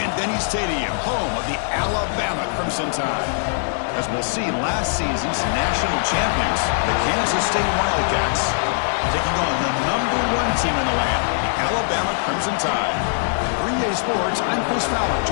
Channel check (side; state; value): right; silent; digital silence